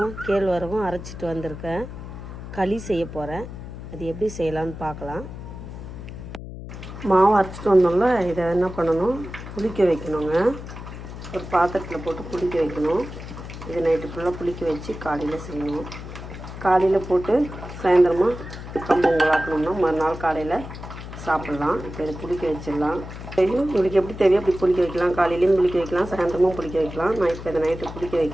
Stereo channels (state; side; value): noise; left; hum, 11 dB below the sound